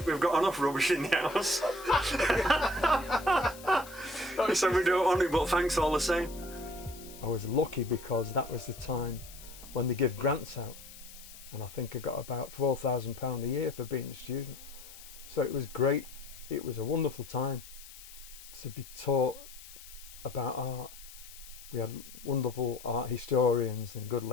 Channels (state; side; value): noise; left; hiss, 17 dB below the sound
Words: we've got enough rubbish in the house." He said, "We don't want it, but thanks all the same." I was lucky because that was the time when they give grants out, and I think I got about £4,000 a year for being a student. So it was great. It was a wonderful time to be taught about art. We had wonderful art historians and good